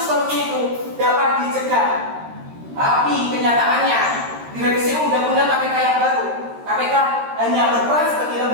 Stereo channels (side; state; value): left; late; 13 ms